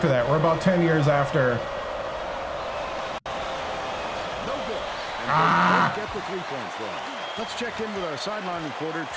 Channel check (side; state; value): both; identical; correlation 1.00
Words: that. We're about 10 years after. Get the 3 points wrong. Let's check in with our sideline reporter,